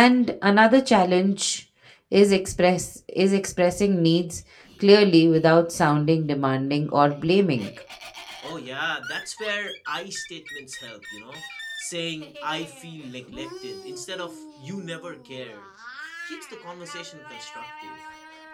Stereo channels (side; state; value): both; identical; correlation 1.00